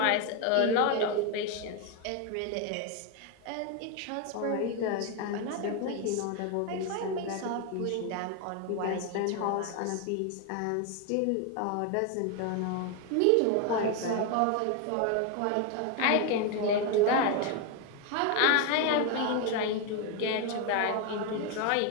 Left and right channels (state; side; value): different; both; correlation 0.01